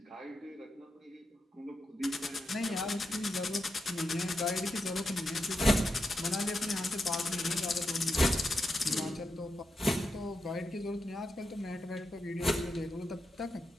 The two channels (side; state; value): both; normal; correlation 0.86